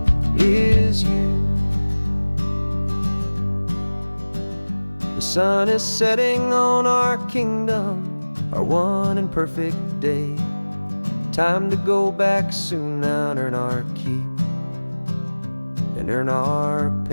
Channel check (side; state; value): both; inverted; correlation -1.00